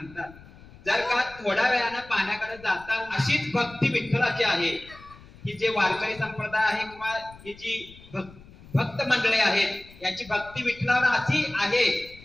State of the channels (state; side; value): noise; left; rumble, 21 dB below the sound